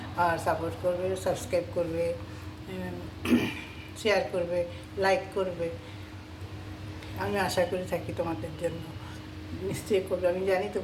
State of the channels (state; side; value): identical; both; correlation 1.00